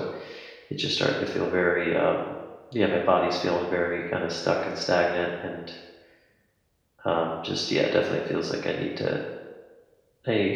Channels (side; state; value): both; identical; correlation 1.00